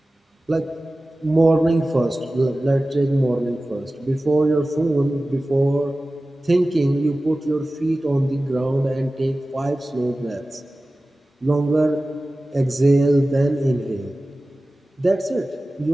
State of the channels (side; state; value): both; normal; correlation 0.96